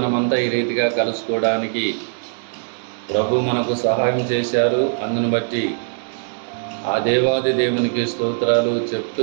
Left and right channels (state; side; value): silent; left; digital silence